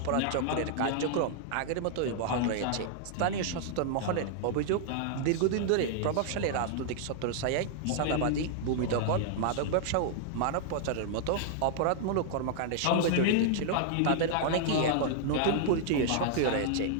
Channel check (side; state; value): both; different; correlation -0.01